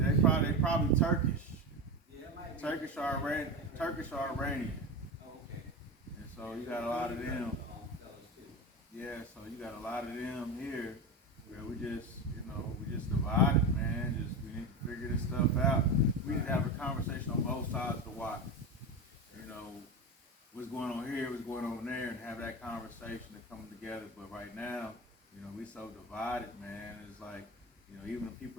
probably Turkish. Turkish or Iranian. And so you got a lot of them. Yeah, so you got a lot of them here where we just divided, man. Just we need to figure this stuff out. We need to have a conversation on both sides to watch. You know, what's going on here, what's going on there, and have that conversation to come together. But right now, we so divided, man. It's like, even the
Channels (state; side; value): normal; both; correlation 0.22